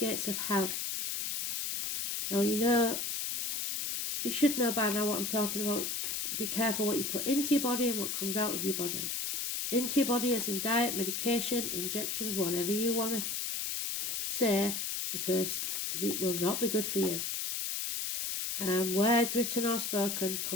of hell. Now, you should know by now what I'm talking about. Be careful what you put into your body and what comes out of your body. Into your body as in diet, medication, injections, whatever you want to say, because it will not be good for you. Words written or spoken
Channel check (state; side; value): noise; left; hiss, 2 dB below the sound